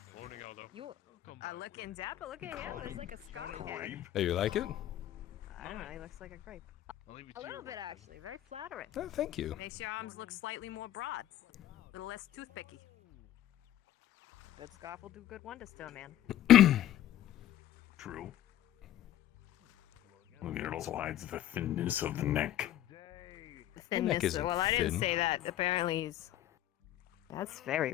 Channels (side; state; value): right; quieter; 12.7 dB